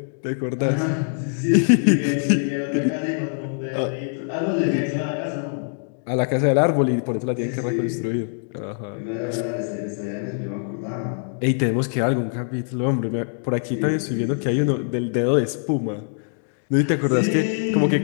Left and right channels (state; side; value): silent; right; digital silence